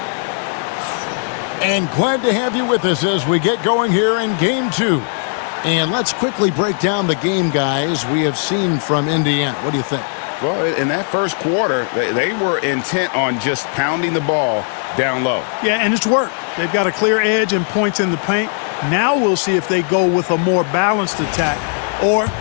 And glad to have you with us as we get going here in Game 2. And let's quickly break down the game, guys, we have seen from Indiana. What do you think? Well, in that first quarter, they were intent on just pounding the ball down low. Yeah, and it's worked. They've got a clear edge and points in the paint. Now we'll see if they go with a more balanced attack or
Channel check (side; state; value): right; silent; 57 dB below the other